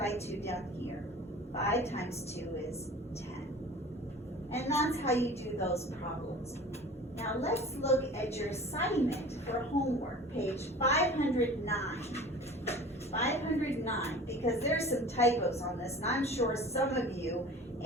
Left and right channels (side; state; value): both; normal; correlation 0.41